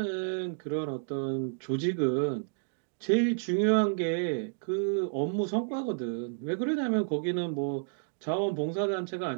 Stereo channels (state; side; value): silent; left; digital silence